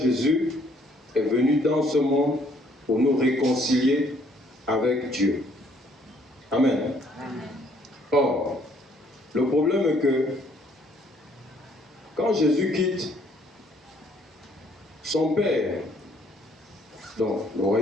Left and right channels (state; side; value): normal; both; correlation 0.65